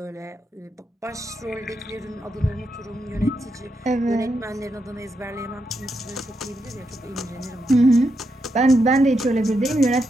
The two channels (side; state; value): both; normal; correlation 0.83